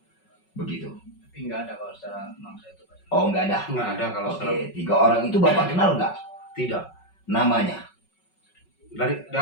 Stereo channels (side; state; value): right; late; 5.4 ms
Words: begitu? Tapi nggak ada kalau secara mangsa itu Pak. Oh, nggak ada? Nggak ada kalau Oke, 3 orang itu Bapak kenal nggak? Tidak. Namanya? Dari